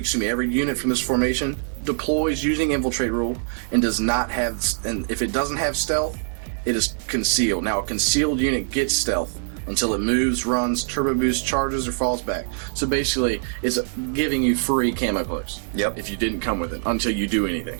from this formation deploys using infiltrate rule and does not have, and if it doesn't have stealth, it is concealed. Now a concealed unit gets stealth until it moves, runs, turbo boosts, charges, or falls back. So basically it's giving you free camo cloaks. Yep. If you didn't come with it until you do anything.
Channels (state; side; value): silent; left; digital silence